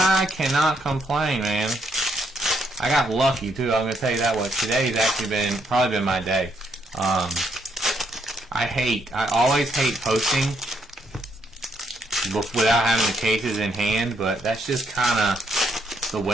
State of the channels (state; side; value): normal; both; correlation 0.74